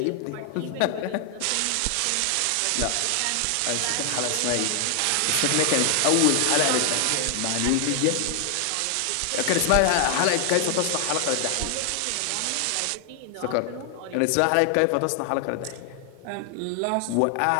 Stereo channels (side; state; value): both; different; correlation 0.00